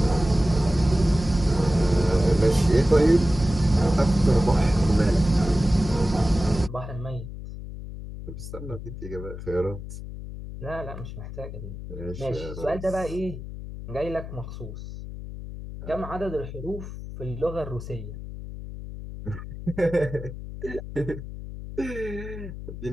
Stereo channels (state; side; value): noise; left; hum, 10 dB below the sound